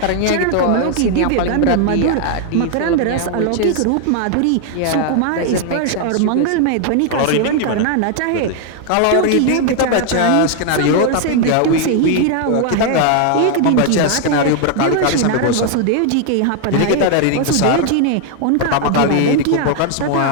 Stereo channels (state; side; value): different; both; correlation 0.00